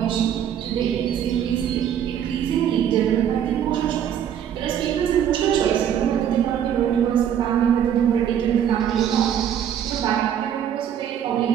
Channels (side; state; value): left; quieter; 9.5 dB